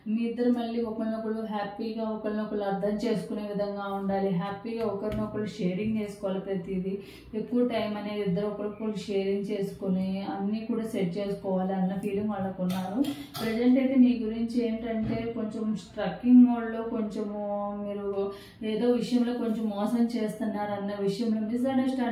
మీ ఇద్దరు మళ్ళీ ఒకరినొకరు హ్యాపీగా ఒకరినొకరు అర్థం చేసుకునే విధంగా ఉండాలి. హ్యాపీగా ఒకరినొకరు షేరింగ్ చేసుకోవాలి. ప్రతిదీ ఎక్కువ టైం అనేది ఇద్దరు ఒకరికొకరు షేరింగ్ చేసుకుని అన్నీ కూడా సెట్ చేసుకోవాలి అన్న ఫీలింగ్ వాళ్ళకు ఉన్నారు. ప్రజెంట్ అయితే మీ గురించి ఏంటంటే కొంచెం స్ట్రక్కింగ్ మోడ్లో, కొంచెము మీరు ఏదో విషయంలో కొంచెం మోసం చేస్తున్నారు అన్న విషయంలో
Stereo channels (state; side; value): identical; both; correlation 1.00